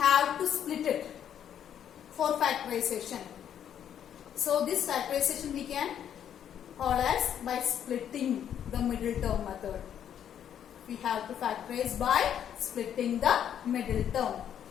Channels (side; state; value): right; quieter; 9.5 dB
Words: to split it for factorization. So this factorization we can call as by splitting the middle term method. We have to factorize by splitting the middle term.